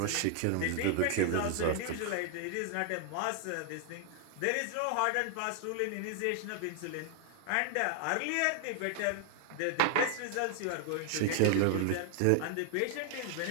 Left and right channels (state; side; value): different; both; correlation 0.00